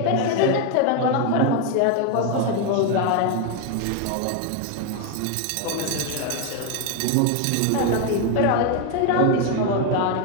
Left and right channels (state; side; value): different; both; correlation 0.01